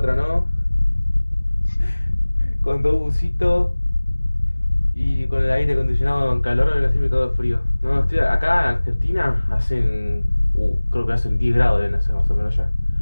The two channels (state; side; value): inverted; both; correlation -1.00